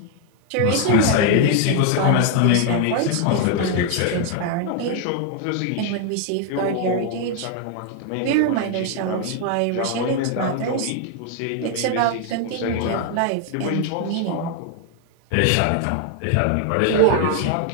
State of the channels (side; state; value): both; different; correlation 0.01